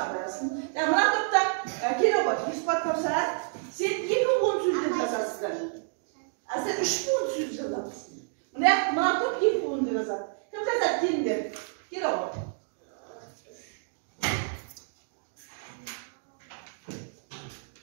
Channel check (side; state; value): left; silent; digital silence